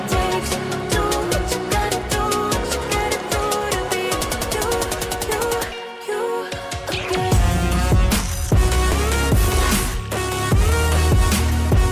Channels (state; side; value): identical; both; correlation 1.00